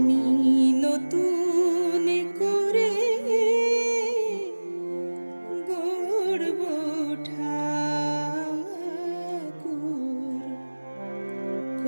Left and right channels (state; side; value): inverted; both; correlation -1.00